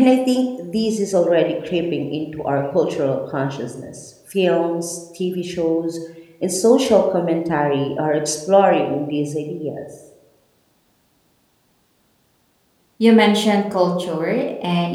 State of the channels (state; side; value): identical; both; correlation 1.00